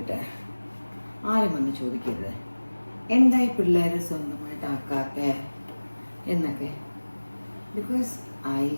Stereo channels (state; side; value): inverted; both; correlation -1.00